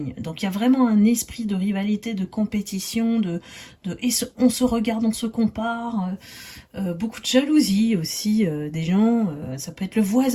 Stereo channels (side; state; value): both; identical; correlation 1.00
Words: Donc il y a vraiment un esprit de rivalité, de compétition, et on se regarde, on se compare, beaucoup de jalousie aussi des gens. Ça peut être le